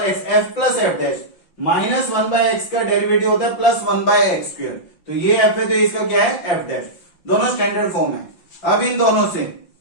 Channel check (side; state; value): right; late; 5.7 ms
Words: x f plus f dash minus 1/x का derivative होता है प्लस 1/x², तो ये f है तो इसका क्या है f डैश, दोनों स्टैंडर्ड फॉर्म है। अब इन दोनों से